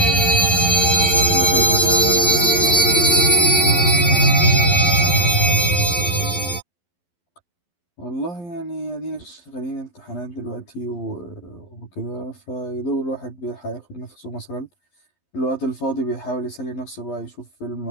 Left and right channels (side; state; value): right; late; 11 ms